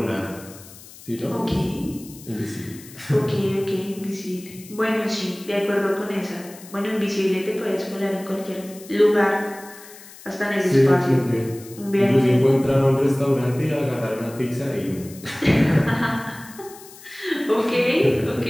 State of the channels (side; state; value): left; noise; hiss, 19 dB below the sound